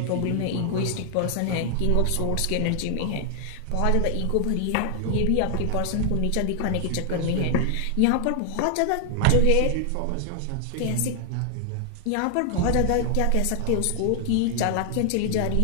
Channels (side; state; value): both; different; correlation 0.00